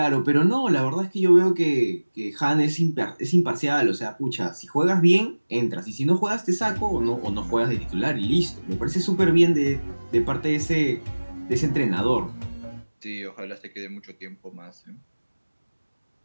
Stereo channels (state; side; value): inverted; both; correlation -1.00